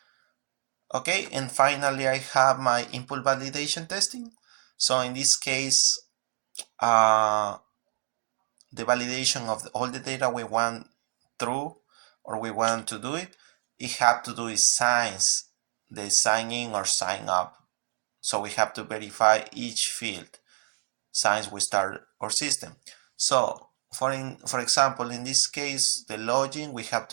Okay, and finally I have my input validation testing. So in this case, the validation of all the data we want through or we want to do it have to do with signs, the sign in or sign up. So we have to verify each field since we start our system. So for example, in this case, the login, we have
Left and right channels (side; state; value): left; silent; digital silence